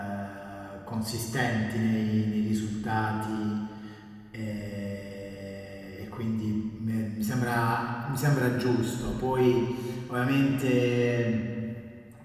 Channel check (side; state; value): both; identical; correlation 1.00